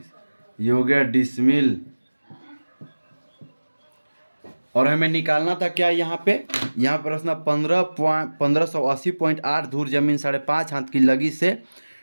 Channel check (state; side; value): inverted; both; correlation -1.00